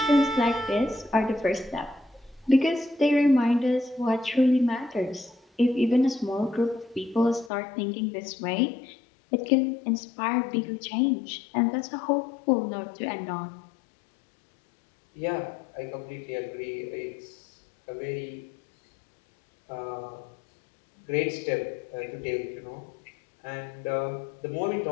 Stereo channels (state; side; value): drops out; right; at 7.5 s